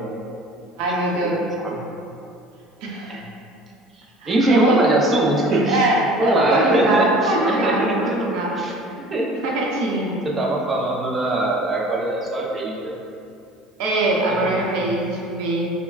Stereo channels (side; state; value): both; normal; correlation 0.45